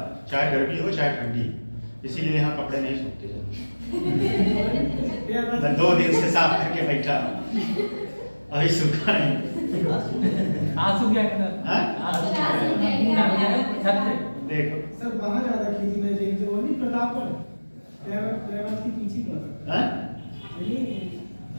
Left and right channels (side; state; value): both; inverted; correlation -1.00